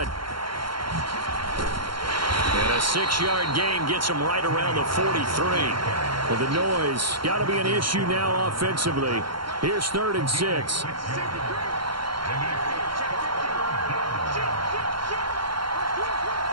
And a 6-yard gain gets him right around the 43. Well, the noise got to be an issue now offensively. Here's 3rd and 6.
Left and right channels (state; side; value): late; left; 0.73 ms